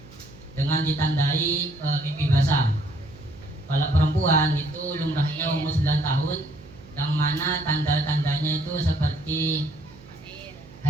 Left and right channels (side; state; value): right; noise; hum, 21 dB below the sound